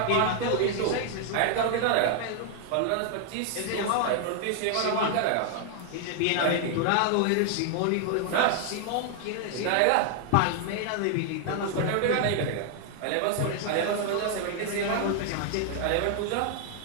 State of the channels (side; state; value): both; different; correlation 0.00